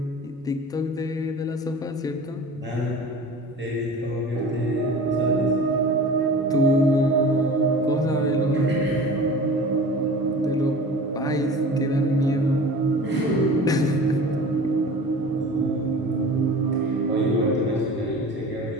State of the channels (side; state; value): both; normal; correlation 0.39